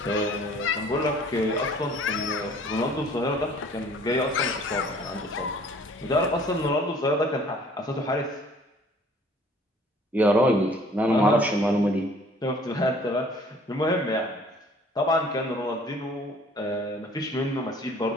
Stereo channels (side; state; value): both; normal; correlation 0.54